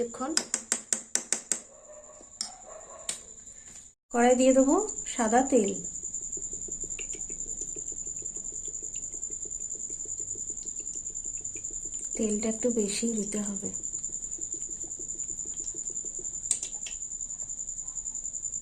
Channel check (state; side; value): identical; both; correlation 1.00